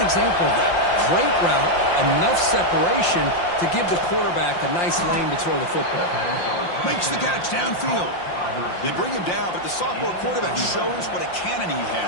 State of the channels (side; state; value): right; late; 5.7 ms